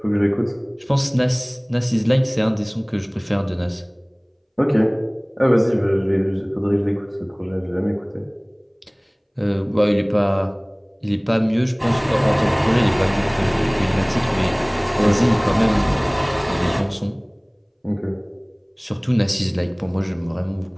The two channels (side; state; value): both; identical; correlation 1.00